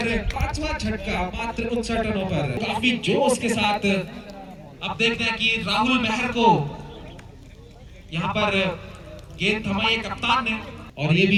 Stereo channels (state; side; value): identical; both; correlation 1.00